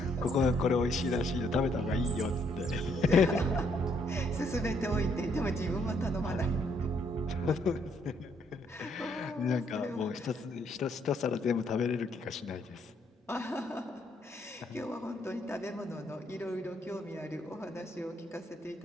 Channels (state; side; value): normal; both; correlation 0.70